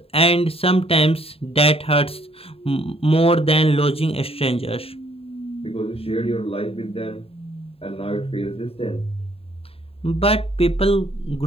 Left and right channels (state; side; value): late; right; 0.28 ms